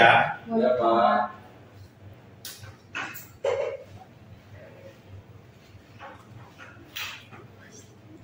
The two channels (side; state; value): both; identical; correlation 1.00